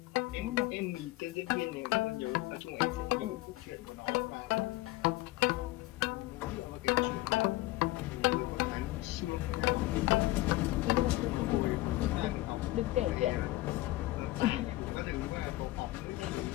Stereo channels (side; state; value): right; quieter; 18.3 dB